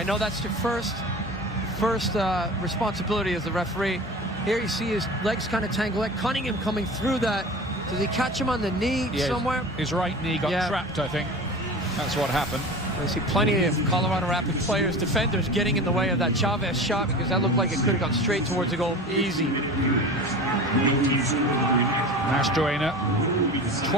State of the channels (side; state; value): both; normal; correlation 0.35